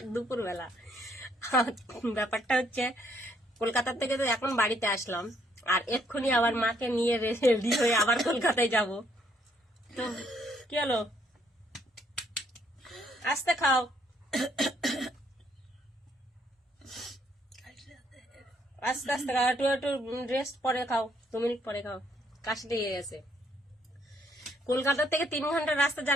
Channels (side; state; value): both; normal; correlation 0.69